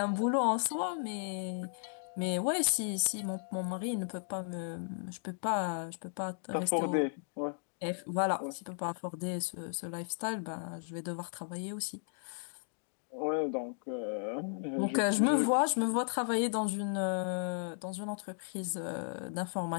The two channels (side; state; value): right; silent; digital silence